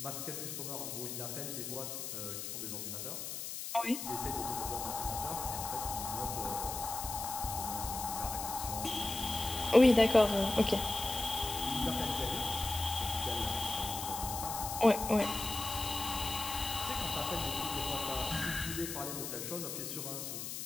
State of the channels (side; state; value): left; noise; hiss, 6 dB below the sound